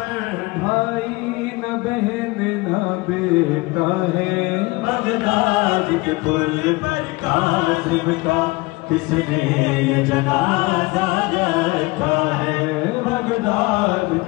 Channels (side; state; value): right; quieter; 23.2 dB